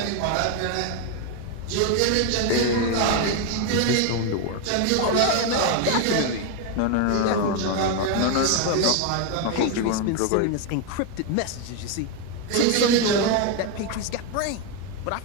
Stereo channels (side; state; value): both; different; correlation 0.01